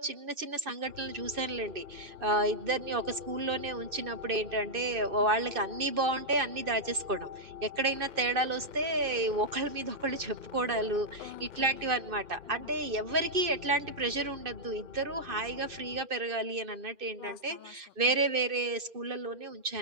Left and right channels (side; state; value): left; late; 2.6 ms